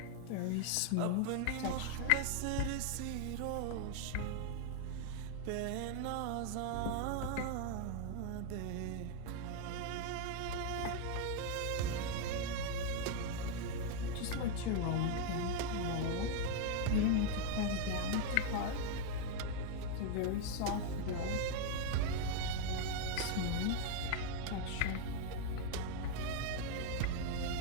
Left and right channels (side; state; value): both; different; correlation 0.00